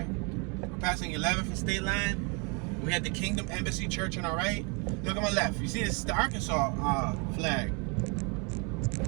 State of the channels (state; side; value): quieter; left; 33.2 dB